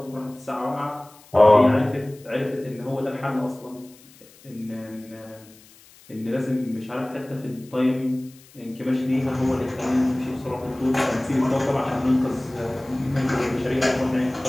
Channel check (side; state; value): left; noise; hiss, 25 dB below the sound